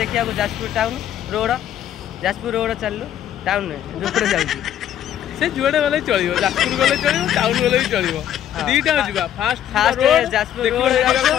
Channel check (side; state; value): right; quieter; 10.8 dB